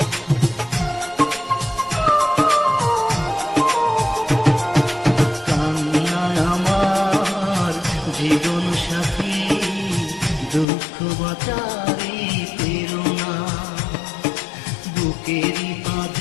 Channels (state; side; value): drops out; right; at 10.7 s